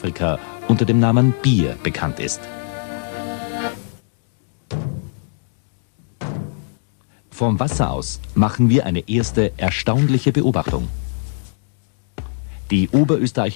unter dem Namen Bier bekannt ist. Vom Wasser aus machen wir eine erste erstaunliche Beobachtung. Die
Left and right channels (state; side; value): silent; right; digital silence